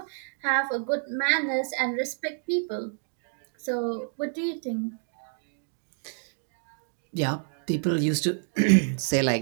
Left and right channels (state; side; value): silent; left; 59 dB below the other